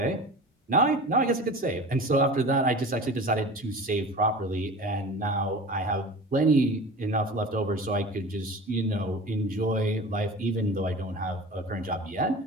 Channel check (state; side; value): normal; both; correlation 0.36